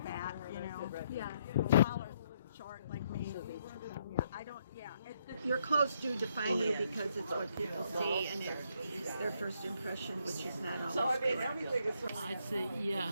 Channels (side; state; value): both; inverted; correlation -0.73